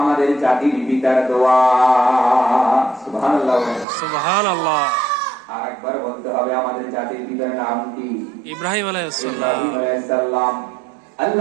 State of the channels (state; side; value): drops out; left; at 3.9 s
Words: জাতির পিতার দোয়া। সুবহানাল্লাহ, সুবহানাল্লাহ। আর একবার বলতে হবে, আমাদের জাতির পিতার নাম কি? ইব্রাহিম আলাইহিস সালাম।